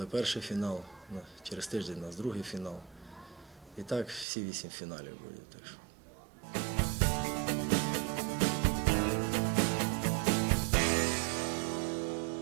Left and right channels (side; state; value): left; drops out; at 4.2 s